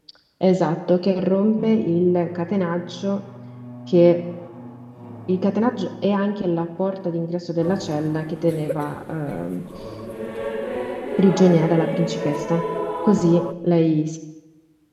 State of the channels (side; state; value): both; identical; correlation 1.00